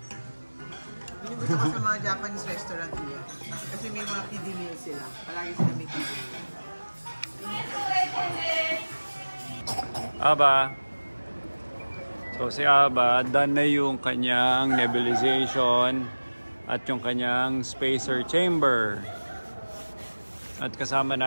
Hindi gusto ko sa mga Japanese restaurant nila. Kasi may mga kiddie meal sila. Palagi sila may kiddie meal. Aba. So si Aba, done na yung kanyang nebulization at yung kanyang spacer chamber. At kasama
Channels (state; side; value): inverted; both; correlation -1.00